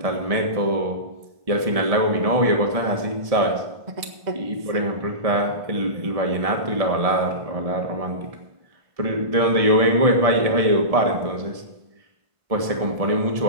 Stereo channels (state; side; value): late; left; 1.7 ms